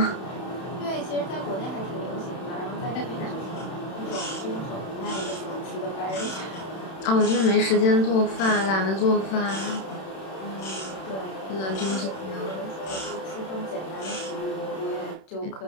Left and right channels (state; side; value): late; right; 31 ms